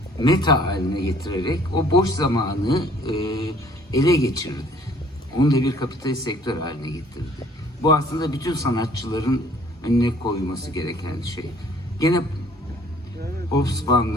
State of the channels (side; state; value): both; normal; correlation 0.58